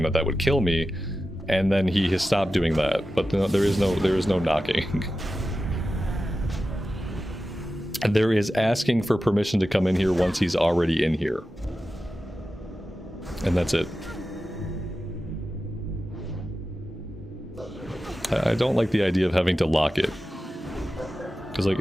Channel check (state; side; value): normal; both; correlation 0.93